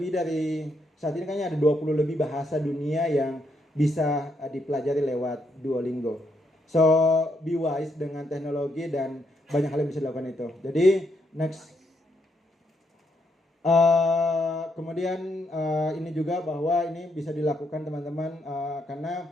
dari, saat ini kayaknya ada 20 lebih bahasa dunia yang bisa dipelajari lewat Duolingo. So be wise dengan teknologi dan banyak hal yang bisa dilakukan itu. Jadi next. Kemudian ini juga bahwa ini bisa dilakukan teman-teman karena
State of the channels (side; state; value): both; normal; correlation 0.77